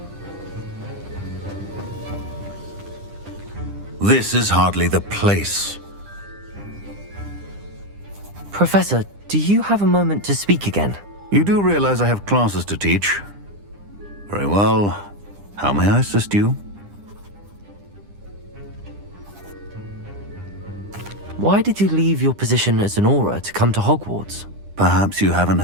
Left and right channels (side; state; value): left; late; 9.9 ms